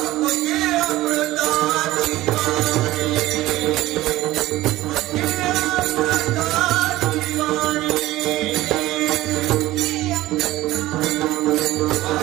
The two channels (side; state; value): left; quieter; 16.8 dB